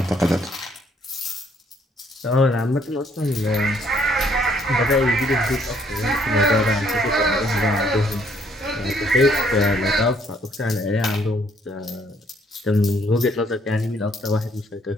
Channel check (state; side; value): normal; both; correlation 0.66